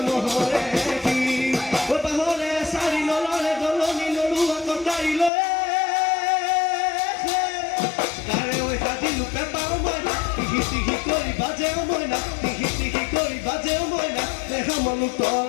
কি পাহৰে চাৰি নলৰে দলনি নৰুৱা কটাৰি লৈ তাৰে ঐ হাজিলো পেপাৰ মইনা টিহি টিহি কৰি বাজেও মইনা টিহি টিহি কৰি বাজেও মইনা দেখা মনো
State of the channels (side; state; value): right; drops out; at 5.3 s